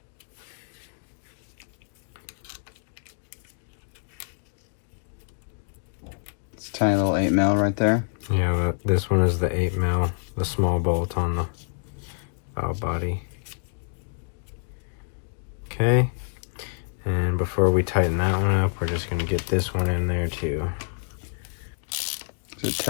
It's a tiny little 8mm right there. Yeah, this one is the 8mm, the small bolt on the valve body. Okay, and before we tighten that one up, we're just going to get this one in there too. Is it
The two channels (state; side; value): silent; right; digital silence